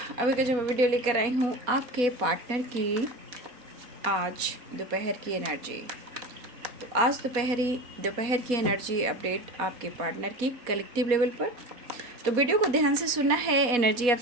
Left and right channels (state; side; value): late; left; 4.1 ms